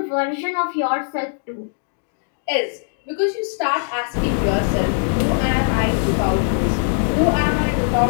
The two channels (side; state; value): right; silent; digital silence